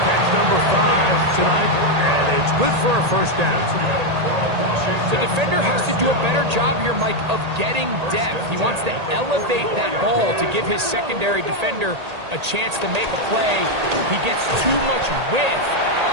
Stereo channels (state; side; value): late; left; 1.8 ms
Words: catch number 5 tonight, and it's good for a first down. The defender has to do a better job here, Mike, of getting depth. He wants to elevate that ball to give his secondary defender a chance to make a play. He gets too much width,